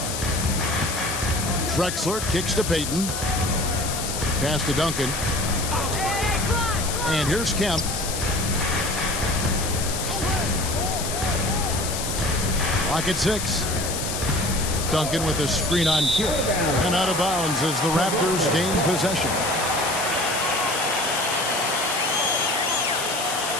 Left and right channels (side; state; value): left; noise; hiss, 5 dB below the sound